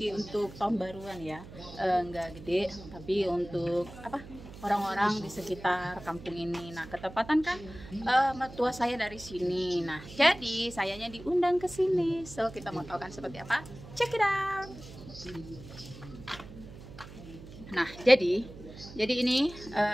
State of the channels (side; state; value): right; noise; hum, 15 dB below the sound